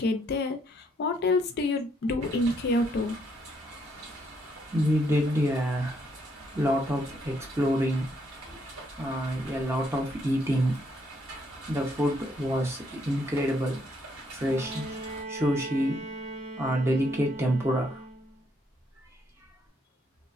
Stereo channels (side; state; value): both; normal; correlation 0.72